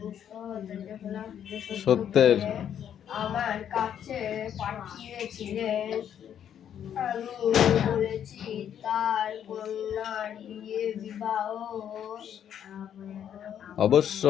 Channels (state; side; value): quieter; right; 9.4 dB